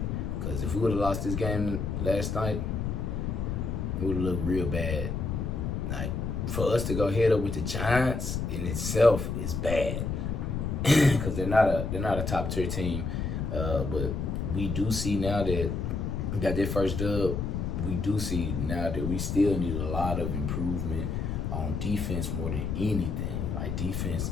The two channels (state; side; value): noise; left; rumble, 2 dB below the sound